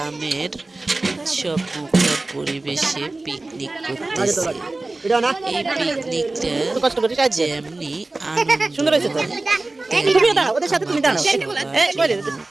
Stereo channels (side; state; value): left; quieter; 3.1 dB